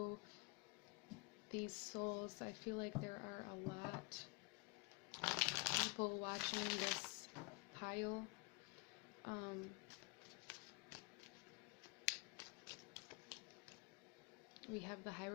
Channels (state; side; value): quieter; right; 27.2 dB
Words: These souls, I feel like there are a lot of people watching this pile. We have the